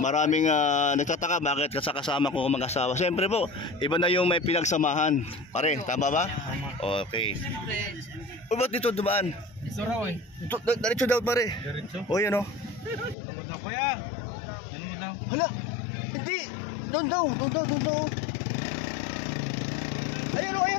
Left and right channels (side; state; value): right; drops out; at 13.2 s